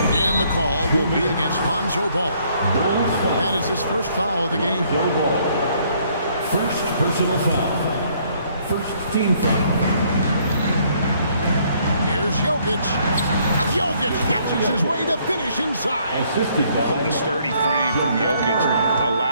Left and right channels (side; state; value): both; inverted; correlation -0.66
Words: And the call will be against Lonzo Ball. That is his first foul of the game. First personal foul. First team foul. Here's Jokic. Jokic catches his way to finish inside. Assisted by The sturdy frame from Jokic